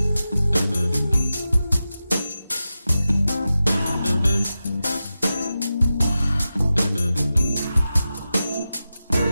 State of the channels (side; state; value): both; inverted; correlation -0.92